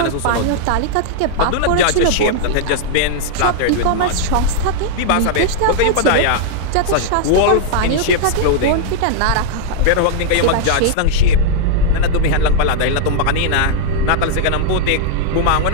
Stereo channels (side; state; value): both; different; correlation -0.01